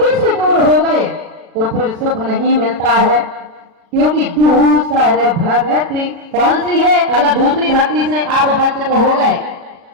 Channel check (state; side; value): late; left; 36 ms